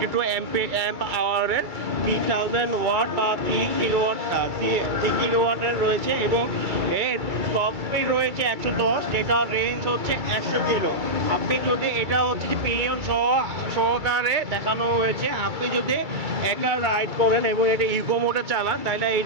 অ্যাম্প আওয়ারের 3000 ওয়াট বা 3 কিলোওয়াটের রয়েছে এবং এর টপ স্পিড রয়েছে 110, যেটা রেঞ্জ হচ্ছে 100 কিলো। আপনি যদি এটা হচ্ছে যে পিলিয়ন সহকারে দেখানো হয়েছে, আপনি যদি একা রাইড করেন এবং এটা ইকো মোডে চালান তাহলে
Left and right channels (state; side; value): late; left; 2.3 ms